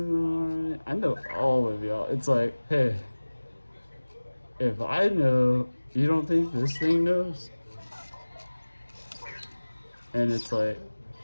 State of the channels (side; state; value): both; inverted; correlation -1.00